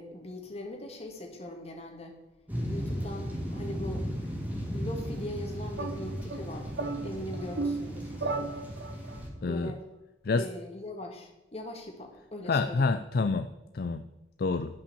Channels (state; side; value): normal; both; correlation 0.55